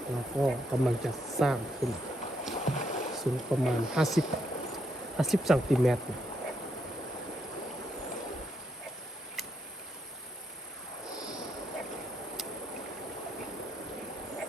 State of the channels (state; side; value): normal; both; correlation 0.77